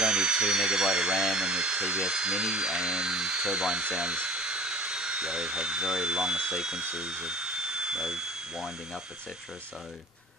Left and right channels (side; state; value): both; normal; correlation 0.46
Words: only 2 MB of RAM in the TBS Mini, and turbine sounds, have very long sequences of winding up, etc. So